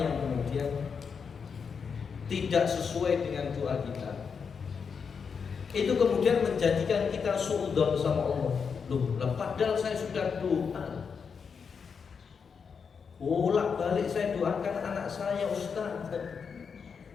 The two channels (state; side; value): quieter; right; 6.1 dB